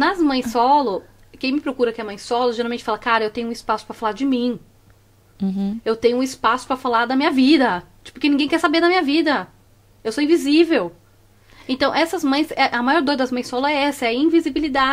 mães solo, quem me procura que é mãe solo, geralmente fala, cara, eu tenho um espaço pra falar de mim. Eu tenho um espaço pra falar da minha vida. Tipo, porque ninguém quer saber da minha vida. Eu sou invisível. Então, essas mães, a maior dor das mães solo é essa, é a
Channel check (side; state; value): both; identical; correlation 1.00